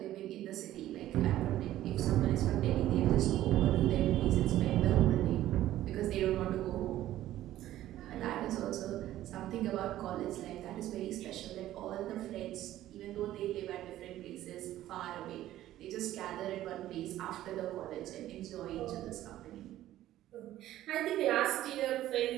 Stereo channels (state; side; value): quieter; left; 13.8 dB